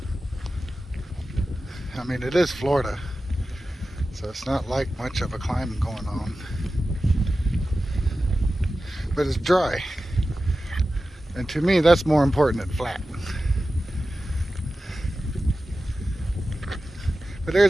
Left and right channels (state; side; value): normal; both; correlation 0.94